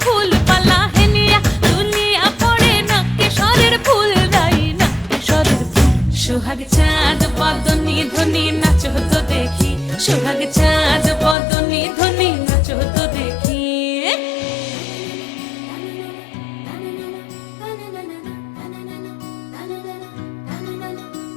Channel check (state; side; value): drops out; right; at 11.4 s